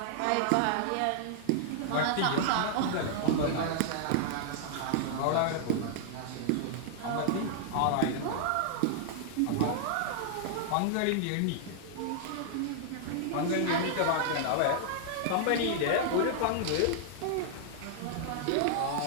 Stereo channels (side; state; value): both; different; correlation -0.01